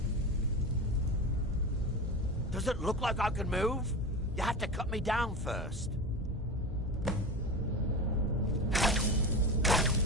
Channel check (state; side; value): normal; both; correlation 0.26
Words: Does it look like I can move? You have to cut me down first.